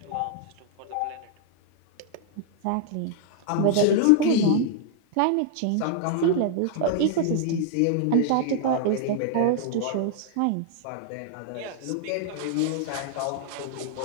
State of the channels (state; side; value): different; both; correlation 0.00